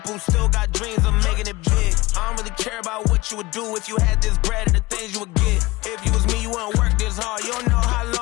who still got dreams of making it big. I don't really care about what you would do if you had this bread and the things you would get. If you was me, you wouldn't work this hard. You don't know how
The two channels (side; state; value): right; quieter; 20.8 dB